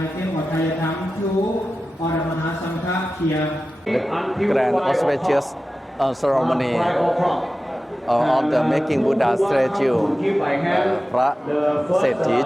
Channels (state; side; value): normal; both; correlation 0.94